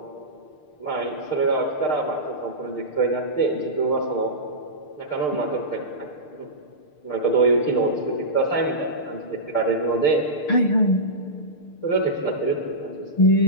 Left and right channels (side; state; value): right; late; 6.6 ms